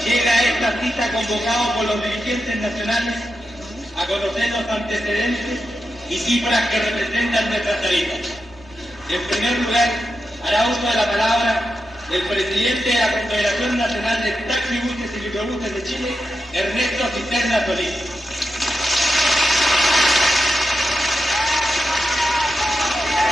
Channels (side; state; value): both; normal; correlation 0.88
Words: llega a esta cita convocado por los dirigentes nacionales a conocer los antecedentes y cifras que representan nuestras tarifas. En primer lugar, hará uso de la palabra el presidente de la Confederación Nacional de Taxibuses y Microbuses de Chile, Ernesto Cisterna Solís.